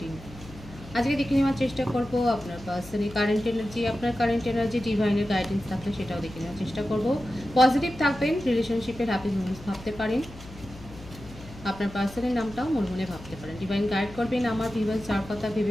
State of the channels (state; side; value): noise; left; hum, 17 dB below the sound